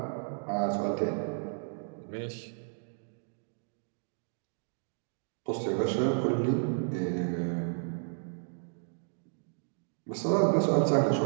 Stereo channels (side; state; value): left; silent; digital silence